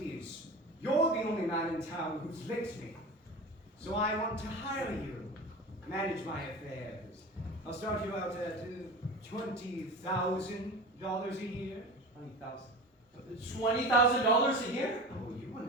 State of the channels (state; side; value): normal; both; correlation 0.32